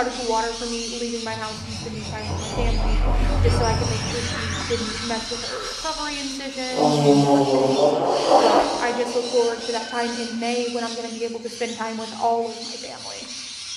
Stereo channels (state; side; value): identical; both; correlation 1.00